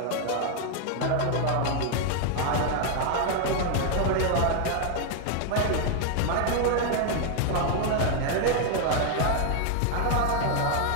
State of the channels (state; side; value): different; both; correlation 0.00